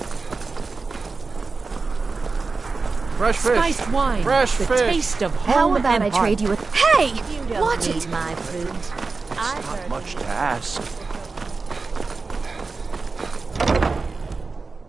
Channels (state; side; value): quieter; left; 4.1 dB